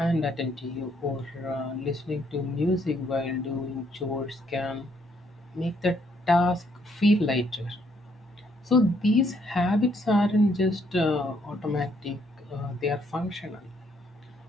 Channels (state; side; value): normal; both; correlation 0.70